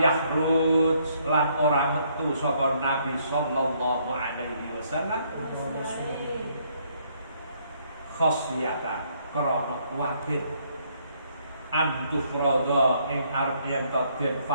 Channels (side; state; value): both; inverted; correlation -0.69